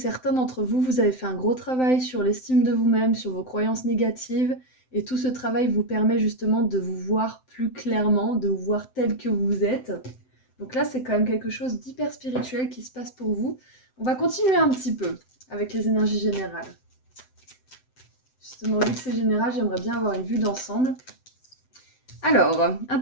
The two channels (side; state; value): right; late; 7.8 ms